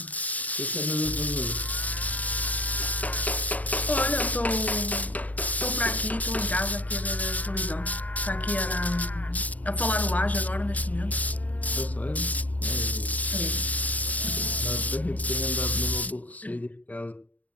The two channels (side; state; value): right; late; 0.072 ms